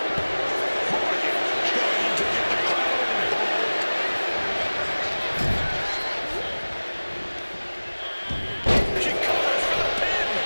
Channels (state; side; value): inverted; both; correlation -1.00